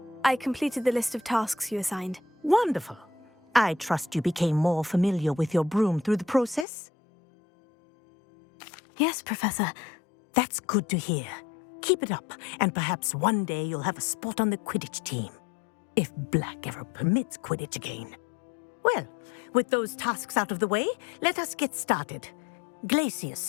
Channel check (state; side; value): drops out; right; at 6.7 s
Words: I completed the list of tasks you assigned. Wonderful. I trust you became more familiar with your broom through the process? Yes, Professor. That's good to hear. Keep it up, and perhaps one day you'll have a spot on the Quidditch team. If Black ever permits Quidditch again. Well, with those tasks out of the way, let us get started.